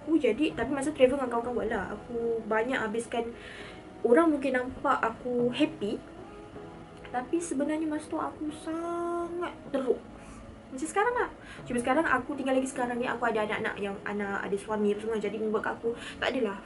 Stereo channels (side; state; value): both; identical; correlation 1.00